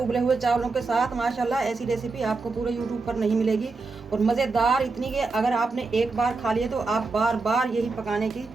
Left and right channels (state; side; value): quieter; left; 3.9 dB